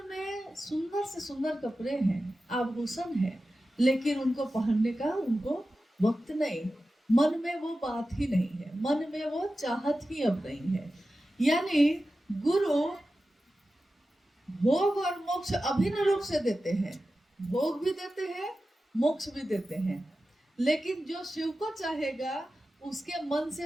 में सुंदर से सुंदर कपड़े हैं, आभूषण है, लेकिन उनको पहनने का उनको वक्त नहीं, मन में वो बात ही नहीं है, मन में वो चाहत ही अब नहीं है। यानी गुरु भोग और मोक्ष अभिन्न रूप से देते हैं, भोग भी देते हैं, मोक्ष भी देते हैं। लेकिन जो शिव को चाहेगा उसके मन से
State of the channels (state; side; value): normal; both; correlation 0.93